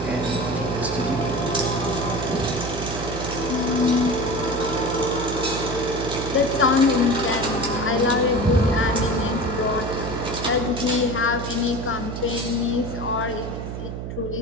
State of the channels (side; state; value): right; noise; hum, 6 dB below the sound